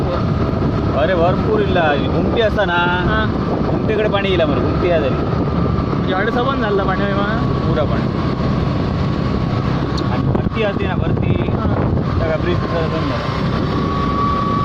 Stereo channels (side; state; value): both; identical; correlation 1.00